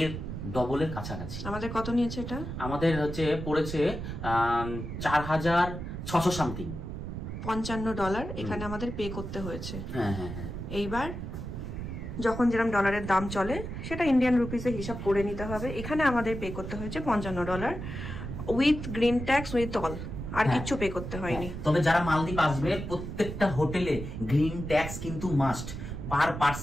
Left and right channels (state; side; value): noise; right; rumble, 7 dB below the sound